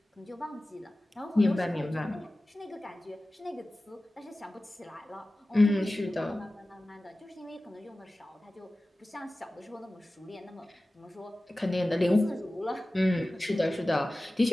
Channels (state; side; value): normal; both; correlation 0.96